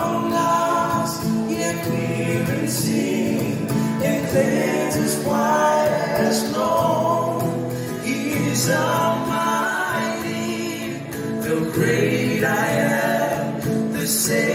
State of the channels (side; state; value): both; identical; correlation 1.00